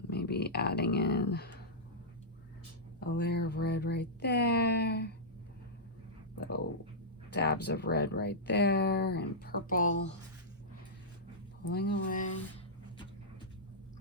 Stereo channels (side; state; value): both; normal; correlation -0.12